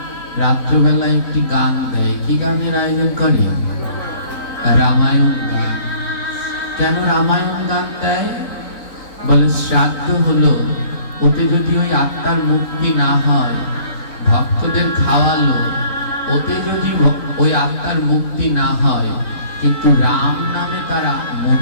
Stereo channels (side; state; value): right; late; 4.0 ms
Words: রাত্রবেলা একটি গান দেয়। কি গানের আয়োজন করে? রামায়ণ গান। কেন রামায়ণ গান দেয়? বলে শ্রাদ্ধ হলো, ওতে যদি ওই আত্মার মুক্তি না হয়, ভক্তদের খাওয়ালো, ওতে যদি ওই আত্মার মুক্তি না হয়, কিন্তু রাম নামে তারা